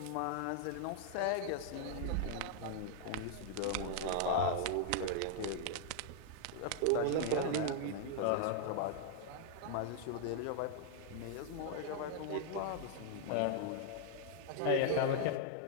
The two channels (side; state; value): both; different; correlation -0.01